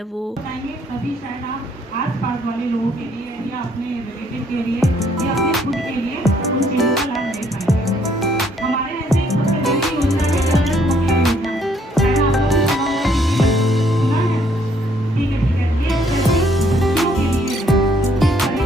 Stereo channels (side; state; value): both; normal; correlation 0.67